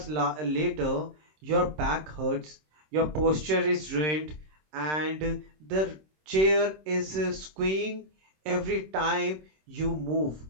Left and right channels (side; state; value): left; late; 26 ms